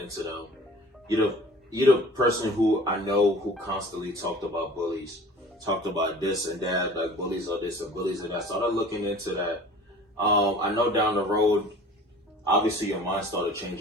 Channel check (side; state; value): both; normal; correlation 0.45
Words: them, you're the person who I know who constantly talked about Bullies, talked about this and that, like Bullies are this and Bullies and that. So I started looking into that. I know down the road, obviously your mind started